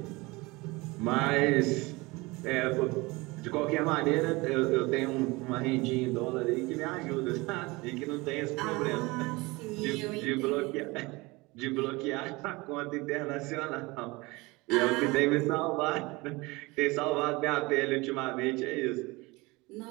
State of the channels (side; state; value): left; quieter; 23.6 dB